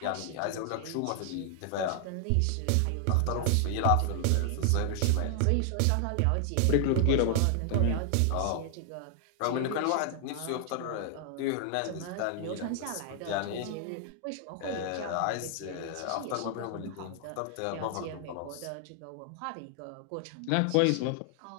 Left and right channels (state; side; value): different; both; correlation 0.00